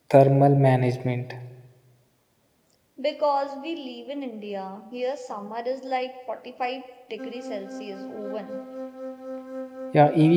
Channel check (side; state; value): both; identical; correlation 1.00